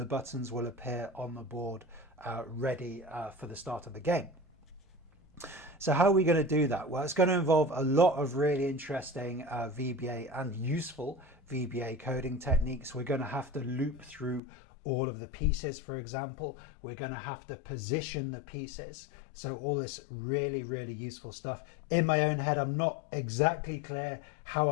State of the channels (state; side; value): drops out; right; at 14.4 s